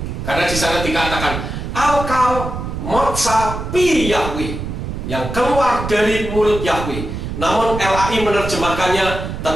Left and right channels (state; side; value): noise; right; rumble, 6 dB below the sound